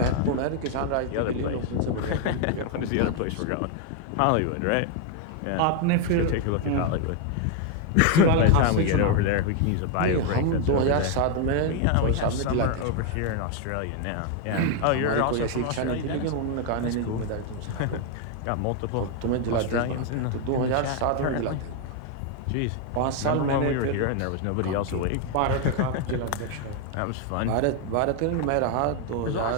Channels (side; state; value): both; different; correlation 0.00